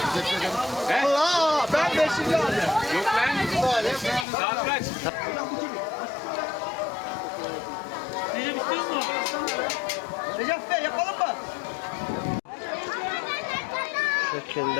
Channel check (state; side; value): drops out; right; at 4.2 s